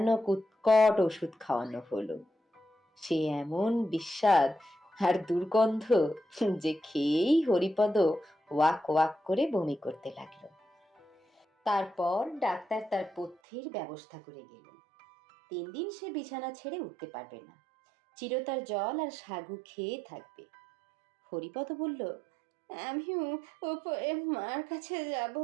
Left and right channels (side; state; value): left; drops out; at 13.4 s